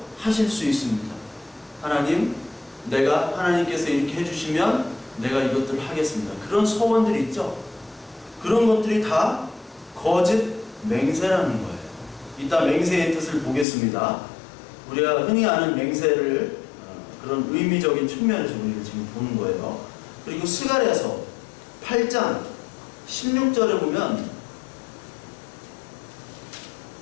하실 수 있습니다. 하나님께서 이렇게 해주시면 내가 이것들을 하겠습니다. 그런 소원들이 있죠. 그런 것들이 다 거짓 맹세라는 거예요. 이따 맹세의 뜻을 보겠습니다. 우리가 흔히 아는 맹세를 그런 의미적인 측면에서 우리가 지금 보는 거예요. 그리고 스가랴서 8장 16절에 보면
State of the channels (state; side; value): drops out; right; at 13.7 s